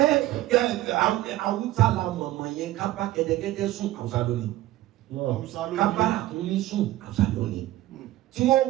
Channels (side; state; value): left; quieter; 15.8 dB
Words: Awúsá la mọ̀mọ̀ yẹn ká bá kẹ́tẹ́kẹ́tẹ́ sùn Awúsá lónìí. Ká bá àkúnmí sùn Awúsá lónìí. Tí wọ́n